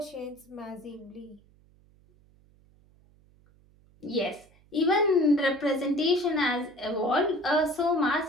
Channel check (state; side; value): noise; right; hum, 30 dB below the sound